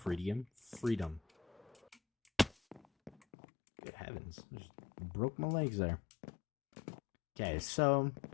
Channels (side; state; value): right; drops out; at 3.2 s